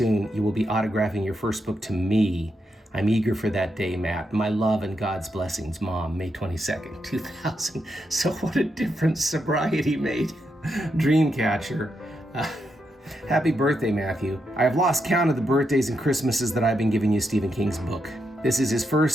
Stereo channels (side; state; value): both; normal; correlation 0.83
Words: you will be autographing your first book to me. I'm eager for that day, Matt. My love and God's blessings, Mom, May 22nd, 2000. So what a difference sobriety made. Dreamcatcher. Happy birthday, Matthew. I have lost count of the birthdays and Christmases that I've been giving you Stephen King's book. This is his